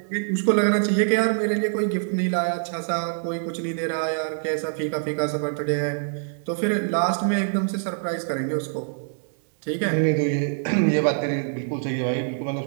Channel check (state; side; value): silent; left; digital silence